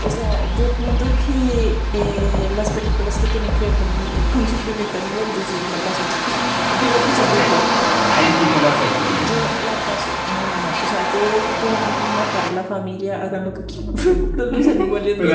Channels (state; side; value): identical; both; correlation 1.00